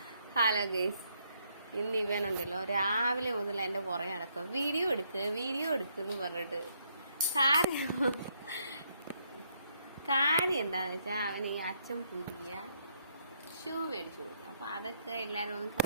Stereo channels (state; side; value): inverted; both; correlation -0.73